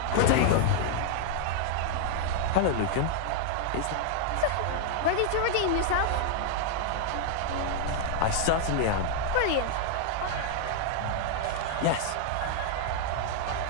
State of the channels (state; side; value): different; both; correlation 0.00